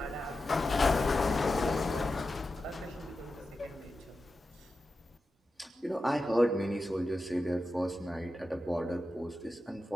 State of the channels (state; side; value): normal; both; correlation 0.91